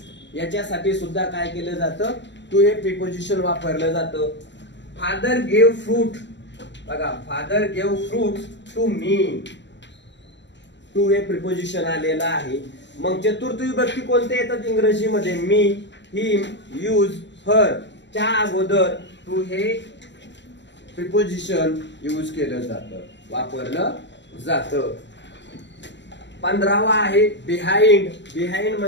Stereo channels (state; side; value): late; right; 0.52 ms